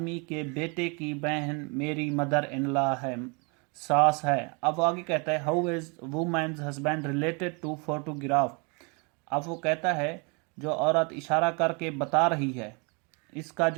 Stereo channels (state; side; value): quieter; left; 32.5 dB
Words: के बेटे की बहन मेरी mother-in-law है, सास है। अब आगे कहता है, "How is woman's husband related to photograph?" अब वो कहता है, जो औरत इशारा करके बता रही है, इसका